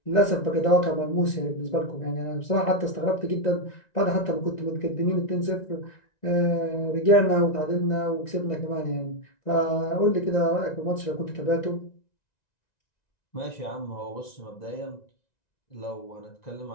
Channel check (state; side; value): late; right; 1.9 ms